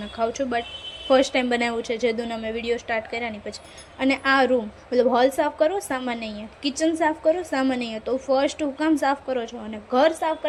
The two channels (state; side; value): identical; both; correlation 1.00